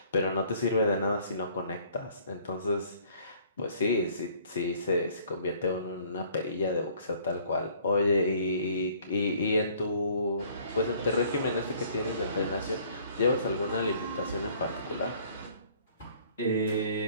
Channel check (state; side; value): inverted; both; correlation -0.58